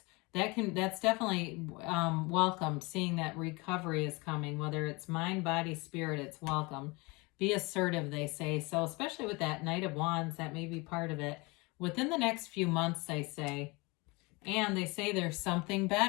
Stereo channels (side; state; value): right; quieter; 26.1 dB